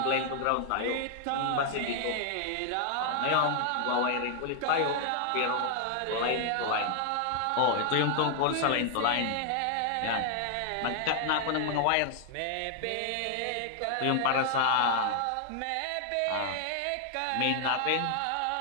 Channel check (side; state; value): both; different; correlation 0.00